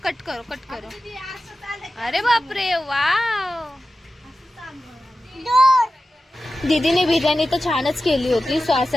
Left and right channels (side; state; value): both; normal; correlation 0.94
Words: कट करो अरे बाप रे वाव दीदीने बिर्याणी तर छानच केली होती. सो